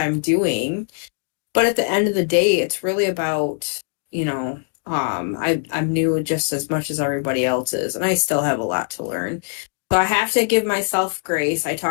doing. But at the end of the day, it's really about, I'm new just as much as everybody else is, and I still have a lot to learn. So I have to give myself grace. I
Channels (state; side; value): silent; right; digital silence